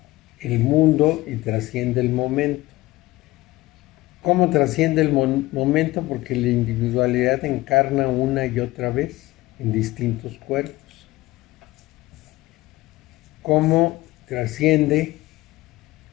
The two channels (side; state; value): right; quieter; 18.7 dB